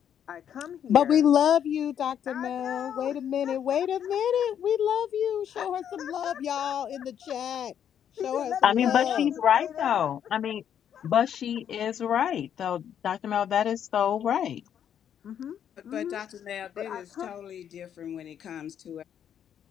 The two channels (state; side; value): quieter; right; 9.2 dB